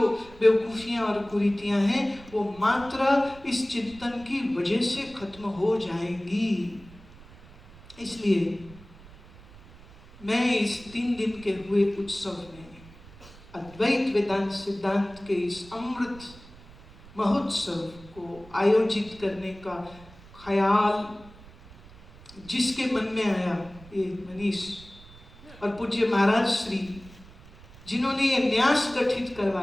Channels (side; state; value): right; noise; rumble, 21 dB below the sound